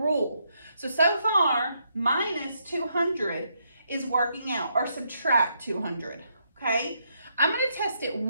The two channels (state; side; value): inverted; both; correlation -0.77